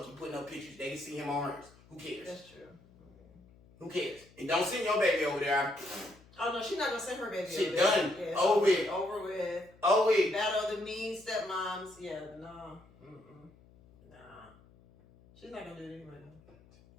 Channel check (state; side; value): noise; left; hum, 26 dB below the sound